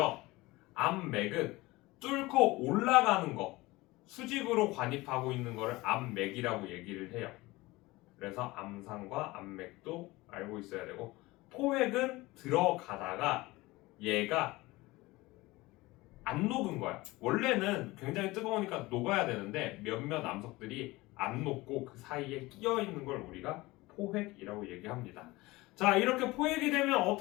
암맥은 뚫고 올라가는 거, 수직으로 관입하고 있는 거를 암맥이라고 얘기를 해요. 그래서 암상과 암맥도 알고 있어야 되고, 포획은 들어가다가 얘가 안 녹은 거야. 원래는 굉장히 뜨거우니까 녹아야 되는데 몇몇 암석들이 안 녹고 그 사이에 끼어 있는 걸 우리가 포획이라고 얘기합니다. 자, 이렇게 포획이 되면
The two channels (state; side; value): quieter; right; 20.7 dB